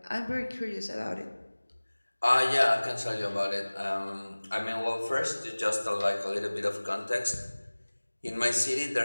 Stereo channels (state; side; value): inverted; both; correlation -1.00